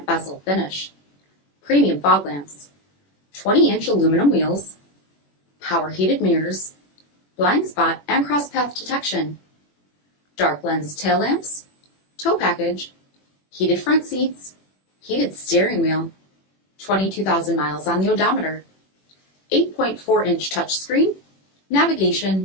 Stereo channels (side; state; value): right; late; 21 ms